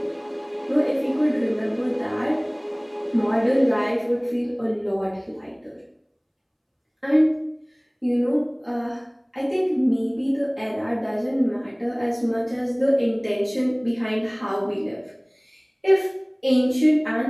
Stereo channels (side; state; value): both; identical; correlation 1.00